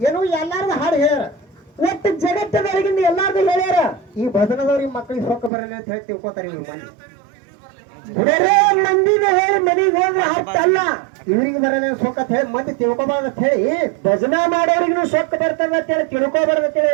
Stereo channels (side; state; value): left; drops out; at 5.5 s